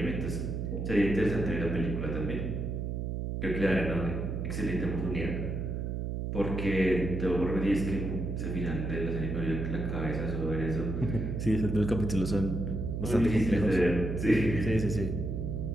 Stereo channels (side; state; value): right; noise; hum, 2 dB below the sound